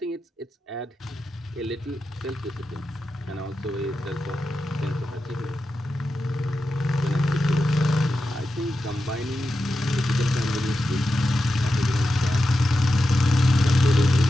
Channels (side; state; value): both; normal; correlation 0.90